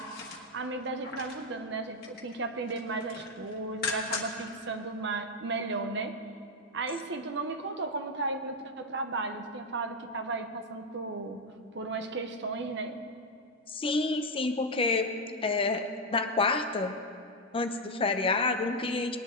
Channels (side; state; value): both; normal; correlation 0.04